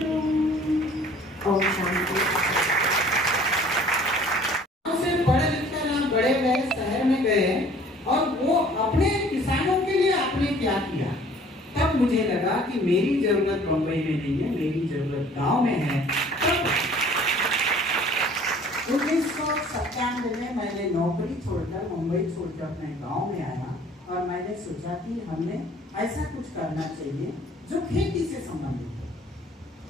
ओम शांति। पढ़े लिखकर हम बड़े गए, शहर में गए और वो अपने किसानों के लिए आपने क्या किया, तब मुझे लगा कि मेरी जरूरत बम्बई में नहीं है, मेरी जरूरत गांव में है। 1997 में मैंने नौकरी छोड़कर, मुंबई छोड़कर अपने गांव में आया और मैंने सोचा कि हमने ऐसा कुछ करना चाहिए जो खेती से संबंधित हो।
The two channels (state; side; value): normal; both; correlation 0.52